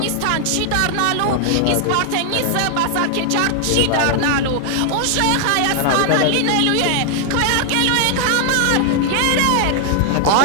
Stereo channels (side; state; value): both; different; correlation 0.00